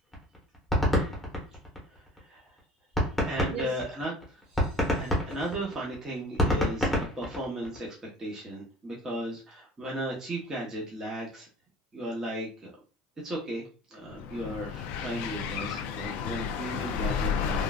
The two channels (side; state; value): both; normal; correlation 0.44